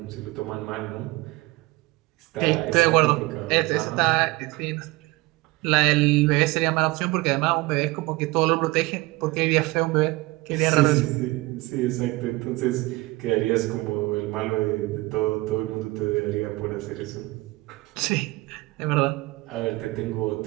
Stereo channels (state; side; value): quieter; left; 21.2 dB